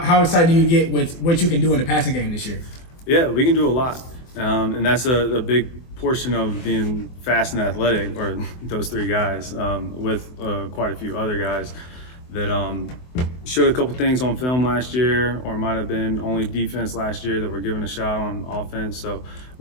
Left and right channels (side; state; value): right; late; 24 ms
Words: excited do you get with what you can do in the passing game this year? Yeah, we can do a lot. And that's a big portion of being fast and athletic, or those three guys, with quite a few other guys that showed a couple things on film last year, or might have been only defense last year that were given a shot on offense. So